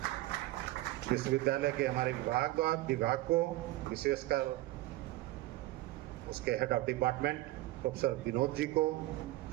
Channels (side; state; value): left; quieter; 17.5 dB